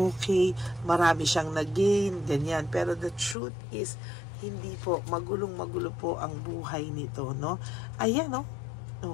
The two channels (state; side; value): drops out; right; at 3.4 s